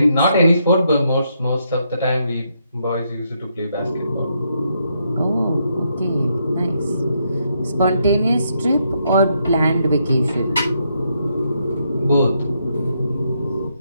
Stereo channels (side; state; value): both; inverted; correlation -0.77